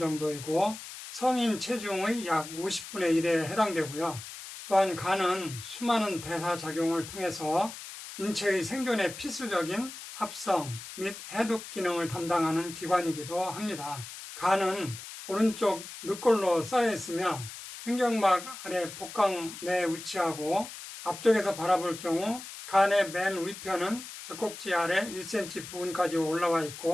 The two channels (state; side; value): noise; left; hiss, 12 dB below the sound